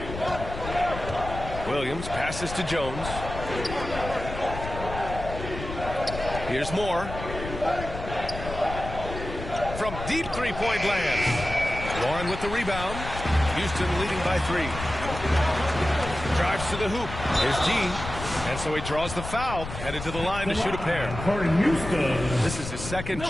Williams passes to Jones. Here's Moore. From deep three-point land. Warren with the rebound. Houston leading by 3. Drives to the hoop. Here's G. And so he draws the foul, headed to the line to shoot a pair. For Houston. This is his second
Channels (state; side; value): noise; left; rumble, 8 dB below the sound